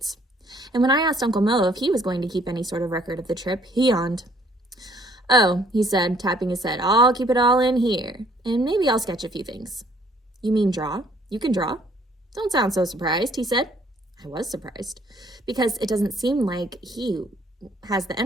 And when I asked Uncle Mo if he was going to keep any sort of record of the trip, he yawned. "Oh," he said, tapping his head, "I'll keep it all in here, and maybe I'll sketch a few things." "You mean draw? You can draw?" "Don't sound so surprised," he said. I was surprised, because it doesn't seem like he has the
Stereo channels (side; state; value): both; normal; correlation 0.62